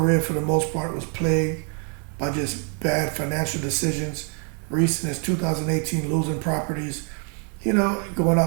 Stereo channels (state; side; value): quieter; left; 39.7 dB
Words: for the most part was plagued by just bad financial decisions, recent as 2018 losing properties, going